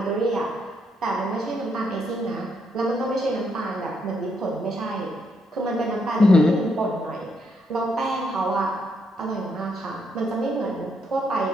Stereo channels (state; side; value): normal; both; correlation 0.76